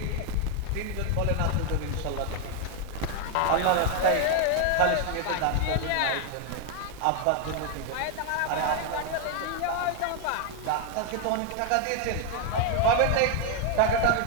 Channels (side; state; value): both; different; correlation 0.00